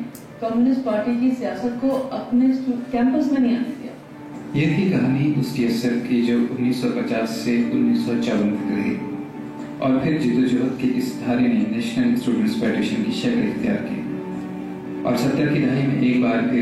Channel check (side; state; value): both; identical; correlation 1.00